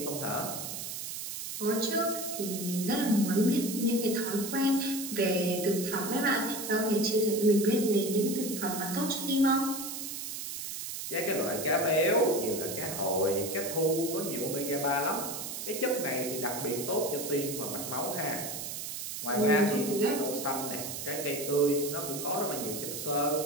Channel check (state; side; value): noise; right; hiss, 6 dB below the sound